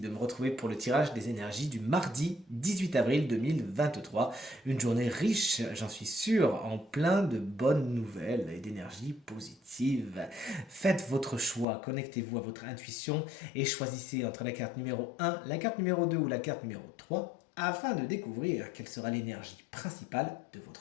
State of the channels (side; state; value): right; drops out; at 11.7 s